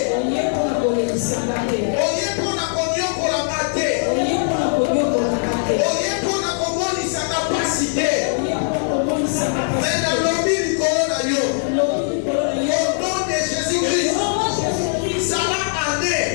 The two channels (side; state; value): right; silent; digital silence